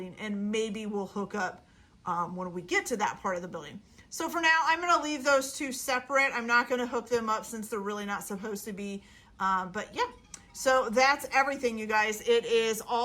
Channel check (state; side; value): identical; both; correlation 1.00